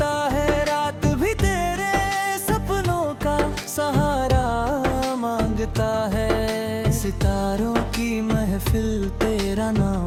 है, रात भी तेरे सपनों का सहारा मांगता है। सितारों की महफिल तेरा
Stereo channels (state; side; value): identical; both; correlation 1.00